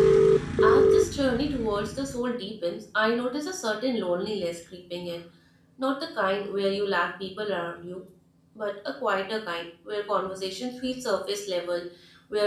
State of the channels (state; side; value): identical; both; correlation 1.00